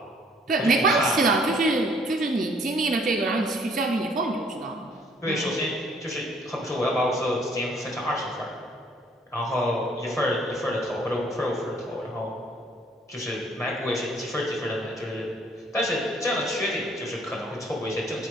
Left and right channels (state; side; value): normal; both; correlation 0.62